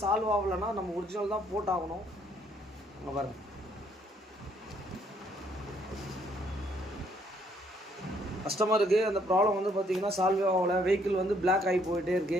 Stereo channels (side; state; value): both; normal; correlation 0.67